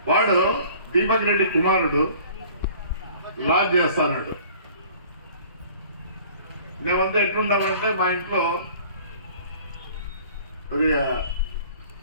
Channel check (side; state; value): both; inverted; correlation -0.50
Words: వాడు దీపక్ రెడ్డి కుమారుడు లాడ్జ్ చేస్తాడు. మేమంతా ఎట్లుంటామంటే మా ఇంట్లో